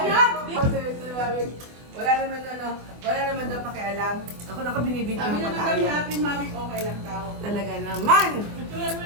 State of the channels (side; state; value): left; late; 24 ms